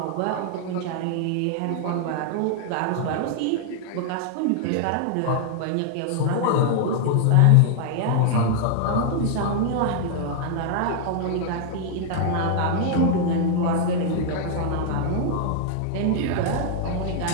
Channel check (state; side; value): different; both; correlation 0.00